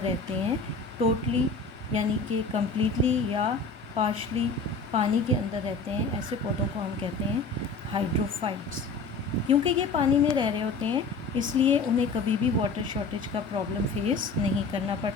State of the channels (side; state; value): right; quieter; 4.0 dB